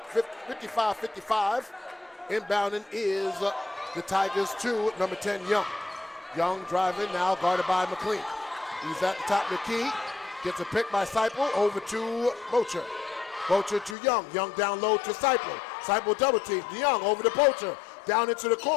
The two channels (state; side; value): drops out; right; at 14.0 s